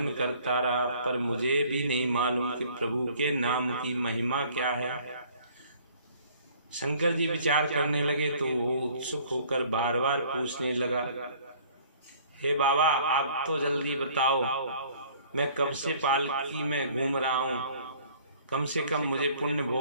करता रहा, पर मुझे भी नहीं मालूम कि प्रभु के नाम की महिमा क्या है। शंकर जी विचार करने लगे तो वो उत्सुक होकर बार बार पूछने लगा, हे बाबा आप तो जल्दी बताओ, मैं कब से पालकी में घूम रहा हूँ, कम से कम मुझे पुण्य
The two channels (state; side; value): inverted; both; correlation -0.55